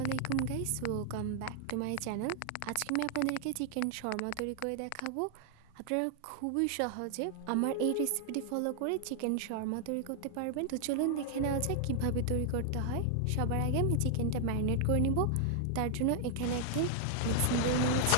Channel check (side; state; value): both; different; correlation 0.00